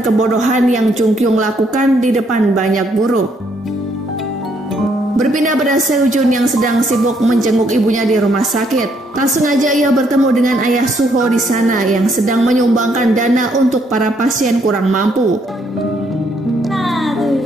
kebodohan yang Jungkyung lakukan di depan banyak guru. Berpindah pada Seojun yang sedang sibuk menjenguk ibunya di rumah sakit. Tak sengaja ia bertemu dengan ayah Suho di sana yang sedang menyumbangkan dana untuk para pasien kurang mampu.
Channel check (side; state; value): both; normal; correlation 0.71